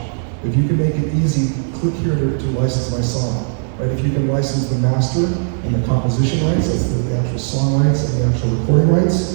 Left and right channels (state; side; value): silent; left; digital silence